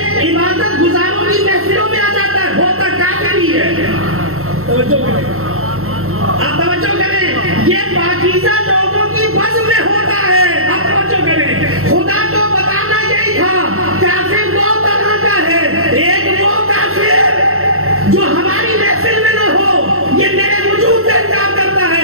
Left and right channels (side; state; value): left; late; 0.62 ms